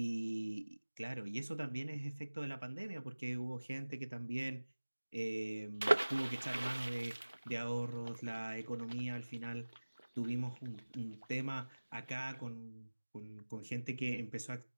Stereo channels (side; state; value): both; inverted; correlation -1.00